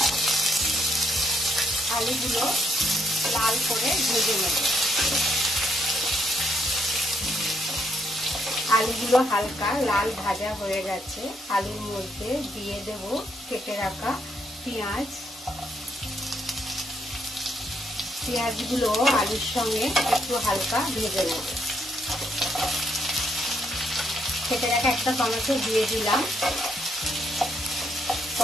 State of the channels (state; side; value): normal; both; correlation 0.75